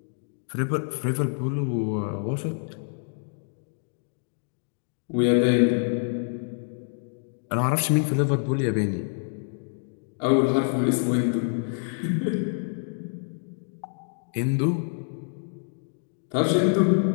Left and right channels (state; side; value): silent; right; digital silence